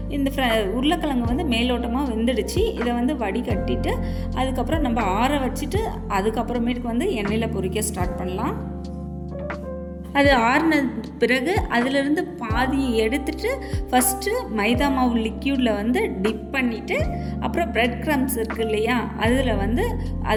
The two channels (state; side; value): identical; both; correlation 1.00